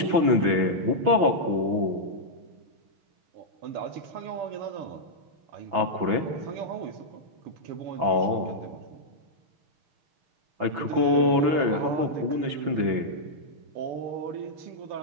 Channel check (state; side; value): late; left; 6.0 ms